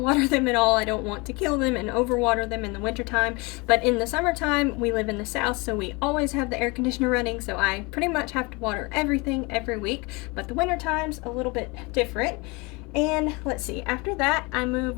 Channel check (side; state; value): right; quieter; 27.0 dB